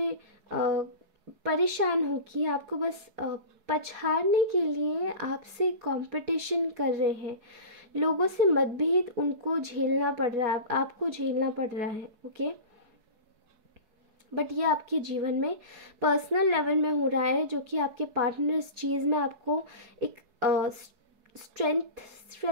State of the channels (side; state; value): left; late; 4.7 ms